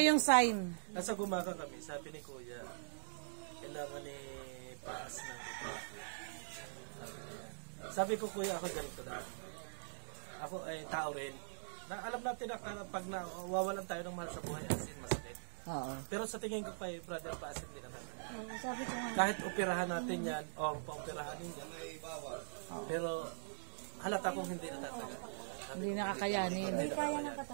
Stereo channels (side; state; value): left; silent; digital silence